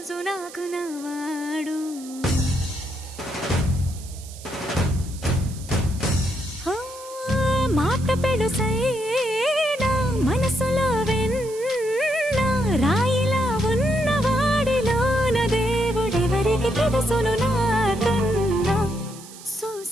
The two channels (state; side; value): noise; right; hiss, 17 dB below the sound